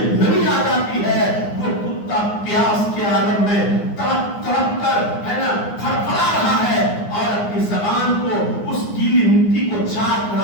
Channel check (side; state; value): right; late; 9.7 ms